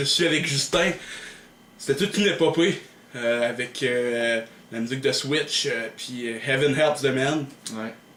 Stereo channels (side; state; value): both; identical; correlation 1.00